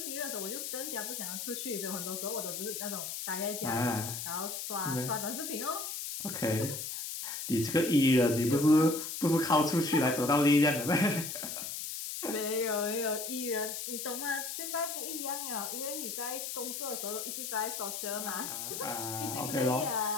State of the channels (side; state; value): left; noise; hiss, 5 dB below the sound